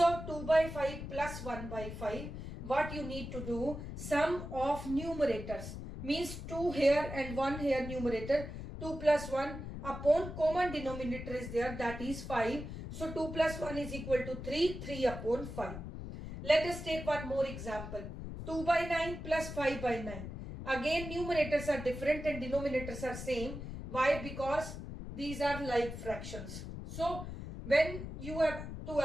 2 by 5 plus 1 by 5, what you need to do, sum of numerators means 2 here and 1 here numerator, 2 plus 1 upon common denominator is there, that is 5. So 2 plus 1 is equal to 3, 3 upon 5. Let us take one more example, 2 by 9 plus 5 by 9. Again numerators are different and denominators are same. Why? Because these are like fractions. So when you have to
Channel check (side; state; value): left; noise; rumble, 8 dB below the sound